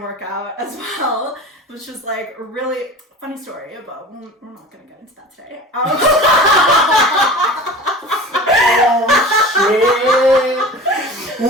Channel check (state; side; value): normal; both; correlation 0.37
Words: work out as well, which was like a really funny story, but we're not going to get into that today. Oh shit!